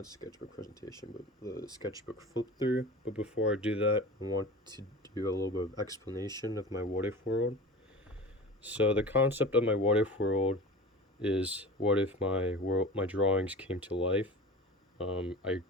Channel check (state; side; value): normal; both; correlation 0.35